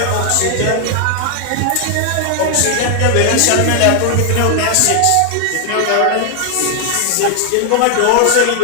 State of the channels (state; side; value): different; both; correlation 0.00